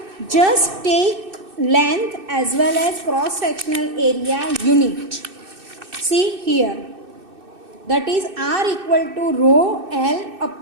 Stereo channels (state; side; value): late; left; 2.6 ms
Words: just take length as well as cross sectional area unit. See here, that is R equal to rho L